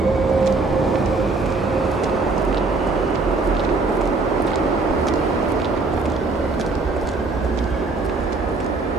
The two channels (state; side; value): quieter; left; 3.7 dB